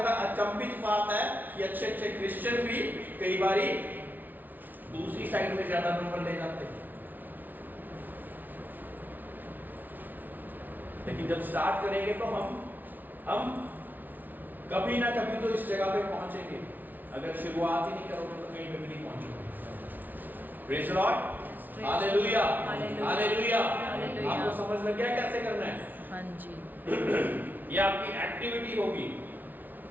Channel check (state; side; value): late; left; 0.084 ms